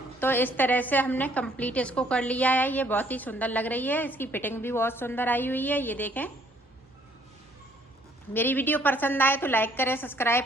तो इस तरह से हमने कंप्लीट इसको कर लिया है। ये बहुत ही सुंदर लग रही है, इसकी फिटिंग भी बहुत सुंदर आई हुई है। ये देखें, मेरी वीडियो पसंद आए तो लाइक करें,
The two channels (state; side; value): normal; both; correlation 0.63